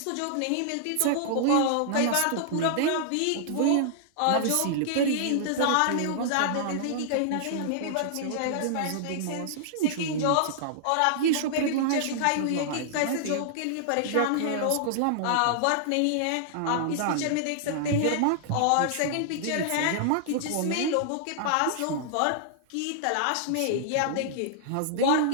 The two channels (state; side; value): different; both; correlation -0.01